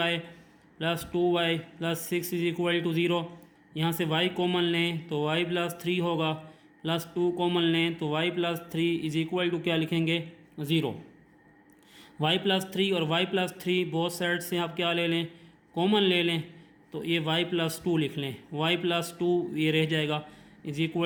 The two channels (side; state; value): both; identical; correlation 1.00